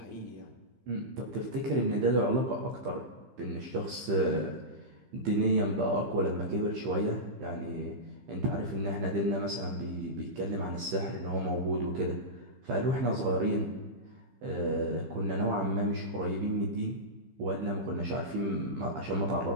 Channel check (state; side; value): late; left; 15 ms